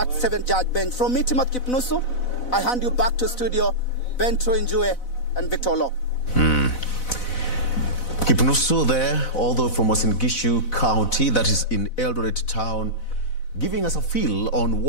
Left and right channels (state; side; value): late; right; 4.0 ms